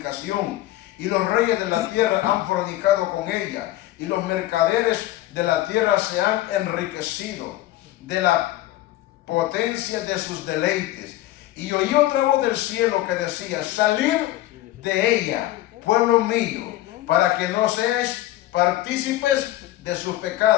y los reyes de la tierra han fornicado con ella, y los mercaderes de la tierra se han enriquecido de la potencia de sus deleites. Y oí otra voz del cielo que decía: salid de ella, pueblo mío, para que no seáis partícipes de sus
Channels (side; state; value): right; quieter; 15.4 dB